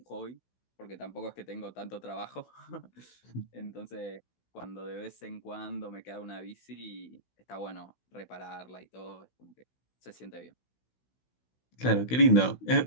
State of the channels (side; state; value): right; late; 16 ms